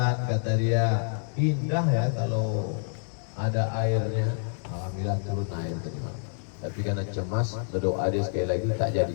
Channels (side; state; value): right; silent; digital silence